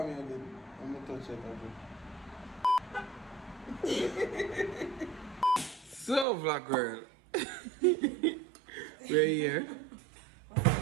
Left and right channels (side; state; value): left; drops out; at 6.2 s